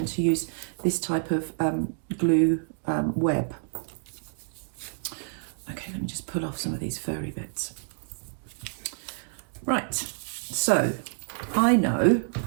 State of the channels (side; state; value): left; silent; digital silence